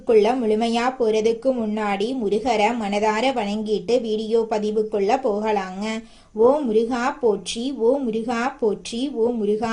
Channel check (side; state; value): both; identical; correlation 1.00